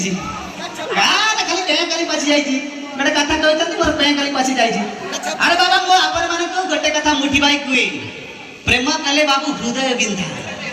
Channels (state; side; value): identical; both; correlation 1.00